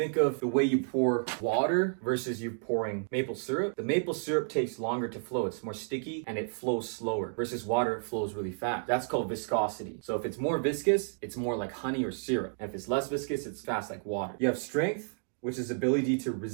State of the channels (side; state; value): left; silent; digital silence